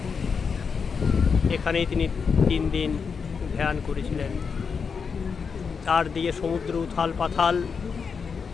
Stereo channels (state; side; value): quieter; right; 5.8 dB